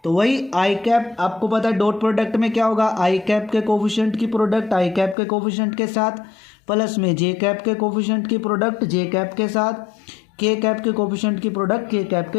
तो वही आई कैप, आपको पता है डॉट प्रोडक्ट में क्या होगा, आई कैप के कोफिशिएंट की प्रोडक्ट आई कैप के कोफिशिएंट के साथ प्लस में जे कैप के कोफिशिएंट की प्रोडक्ट जे कैप के साथ, के कैप के कोफिशिएंट की प्रोडक्ट के कैप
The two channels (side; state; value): right; drops out; at 5.2 s